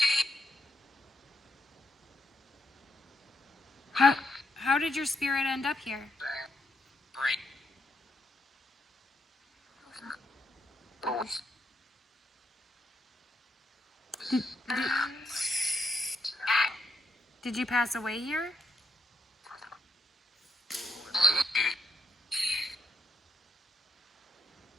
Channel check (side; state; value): both; normal; correlation 0.80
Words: How did your spirit end up here? Did you pass away here?